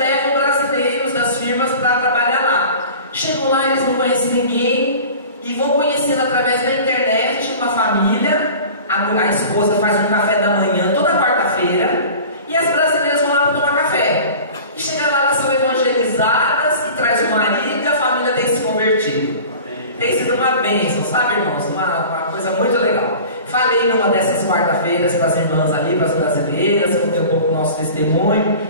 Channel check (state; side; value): inverted; both; correlation -0.40